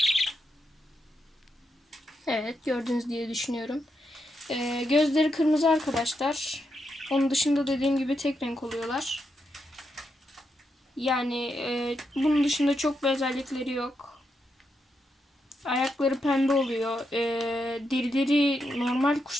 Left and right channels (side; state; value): both; normal; correlation 0.83